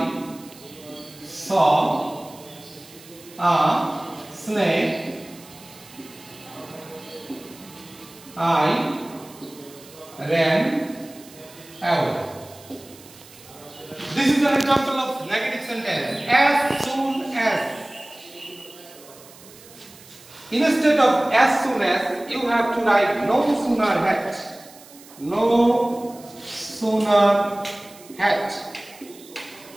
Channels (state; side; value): noise; right; hiss, 21 dB below the sound